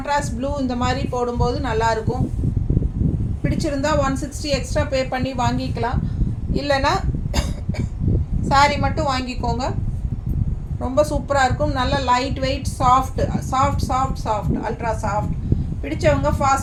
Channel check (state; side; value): identical; both; correlation 1.00